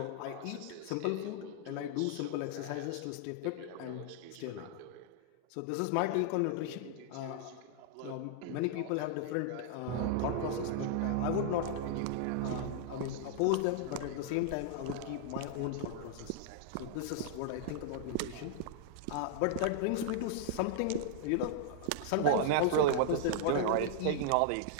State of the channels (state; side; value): different; both; correlation -0.01